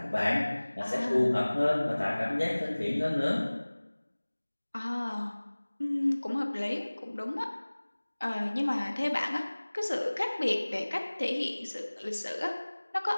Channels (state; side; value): inverted; both; correlation -1.00